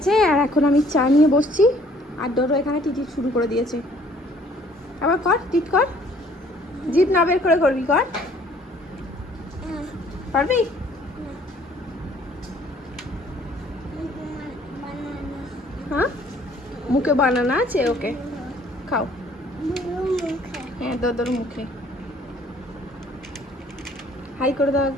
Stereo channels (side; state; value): both; normal; correlation 0.59